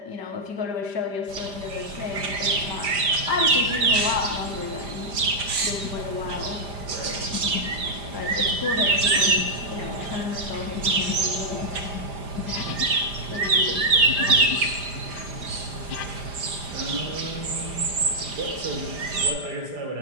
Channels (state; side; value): late; left; 5.0 ms